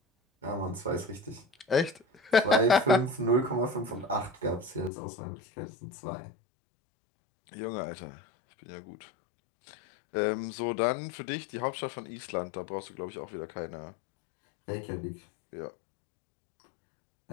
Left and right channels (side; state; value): right; drops out; at 4.9 s